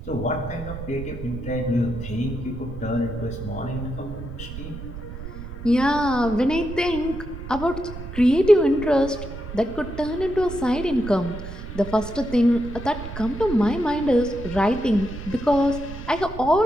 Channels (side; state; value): right; noise; rumble, 10 dB below the sound